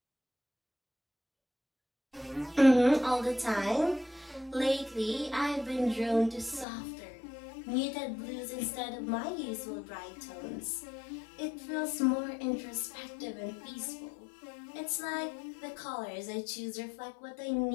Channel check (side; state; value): right; drops out; at 6.7 s